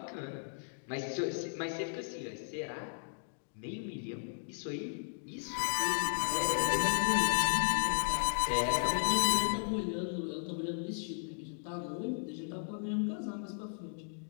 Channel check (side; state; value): right; silent; digital silence